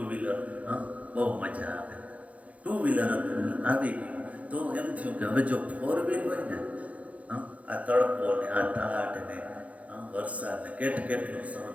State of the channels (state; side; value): late; left; 0.067 ms